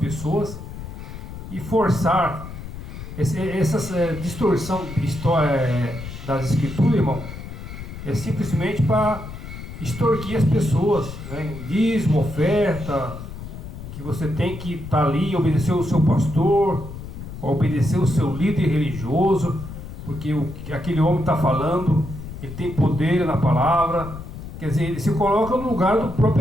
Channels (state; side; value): noise; left; rumble, 11 dB below the sound